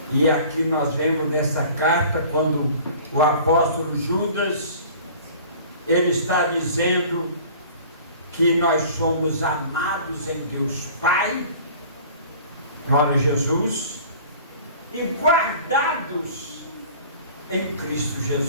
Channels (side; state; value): both; inverted; correlation -0.46